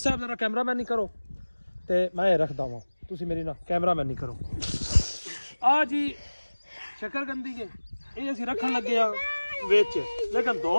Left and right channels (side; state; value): both; inverted; correlation -1.00